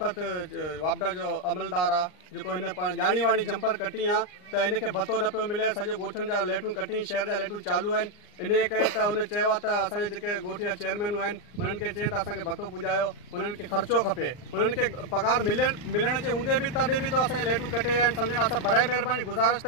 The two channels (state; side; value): late; right; 39 ms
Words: वापदा जो अमलदार आहे जेको हिन ॼाणी वाणी जंपर कटी आहे त इनखे भतो न पियो मिले। सॼो ॻोठनि जा लाइटूं कटी, शहर जा लाइटूं चालू आहिनि। इन जे करे त हुन चयो आहे त असांजे जेके ॻोठ जा चेयरमैनूं आहिनि उन्हनि खे चई त असांखे भतो पुॼायो, उन्हनि खे ख़र्चो खपे, उन्हनि खे पघार मिलण जे हूंदे बि तॾहिं बि त असांजे लाइटूं कटे आहिनि। सम्झनि असां बराए महिरबानी गुज़ारिश